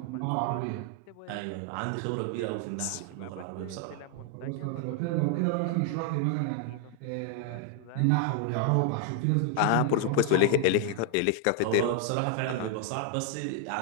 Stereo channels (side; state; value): both; different; correlation 0.00